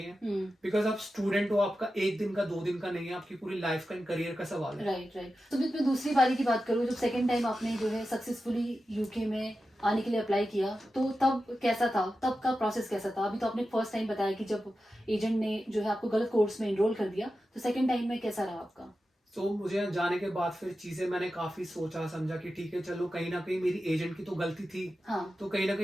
बिकॉज आप स्टूडेंट हो, आपका 1 दिन का 2 दिन का नहीं है, आपकी पूरी लाइफ का करियर का सवाल है। राइट। तो मैं दूसरी बारी की बात करूँ, जब सेकेंड टाइम आपने जो है सक्सेसफुली यूके में आने के लिए अप्लाई किया, तो तब कैसा था, तब का प्रोसेस कैसा था? अभी तो आपने फर्स्ट टाइम बताया कि जब एजेंट ने जो है आपको गलत कोर्स में एनरोल कर दिया, तो सेकंड टाइम में कैसा रहा आपका? तो मुझे जाने के बाद फिर चीजें मैंने काफी सोचा समझा कि ठीक है चलो, कहीं ना कहीं मेरी एजेंट की तो गलती थी, तो कहीं ना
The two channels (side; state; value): both; normal; correlation 0.92